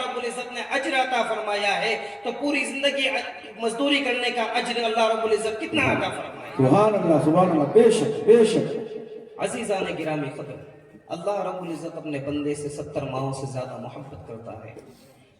العزت نے اجر عطا فرمایا ہے تو پوری زندگی مزدوری کرنے کا اجر اللہ رب العزت کتنا عطا فرمایا۔ سبحان اللہ بے شک بے شک۔ عزیزان گرامی قدر، اللہ رب العزت اپنے بندے سے 70 ماہوں سے زیادہ محبت کرتا ہے۔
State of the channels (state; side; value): identical; both; correlation 1.00